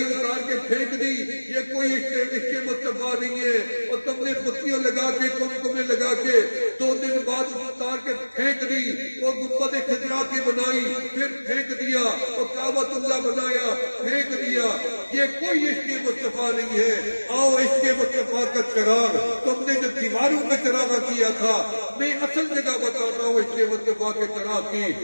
اتار کے پھینک دی، یہ کوئی عشق مصطفیٰ نہیں ہے۔ اور تم نے بتیاں لگا کے، کمکمیں لگا کے 2 دن بعد اتار کے پھینک دی، وہ گنبد خضرا کی بنائی، پھر پھینک دیا، اور کعبۃ اللہ بنایا، پھینک دیا۔ یہ کوئی عشق مصطفیٰ نہیں ہے۔ آؤ عشق مصطفیٰ کا چراغ، تم نے جو دیواروں میں چراغ کیا تھا، میں اصل جگہ بتاتا ہوں عشق مصطفیٰ کے چراغ کی،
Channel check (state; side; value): inverted; both; correlation -1.00